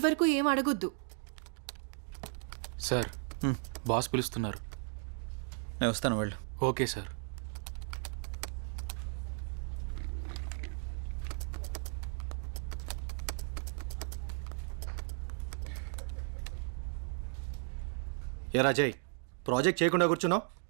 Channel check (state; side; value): silent; left; 54 dB below the other